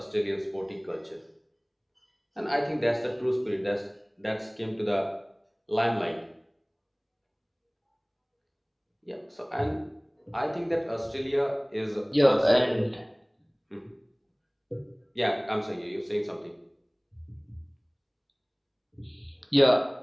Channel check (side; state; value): both; identical; correlation 1.00